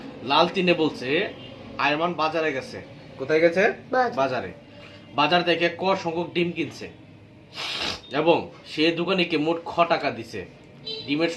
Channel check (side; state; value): both; identical; correlation 1.00